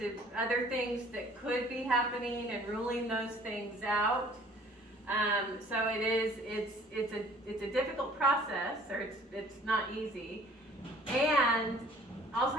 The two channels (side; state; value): both; normal; correlation 0.53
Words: other things that could be happening and ruling those things out. So it's a difficult process, or it's not easy. And